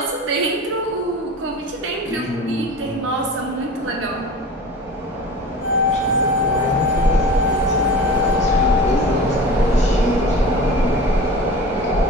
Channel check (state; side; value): normal; both; correlation 0.35